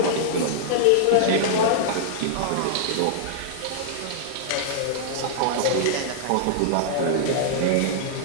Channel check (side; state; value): both; different; correlation -0.01